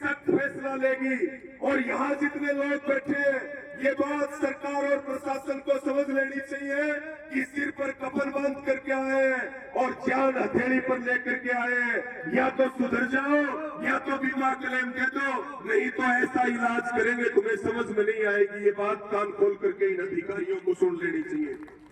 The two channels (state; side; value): identical; both; correlation 1.00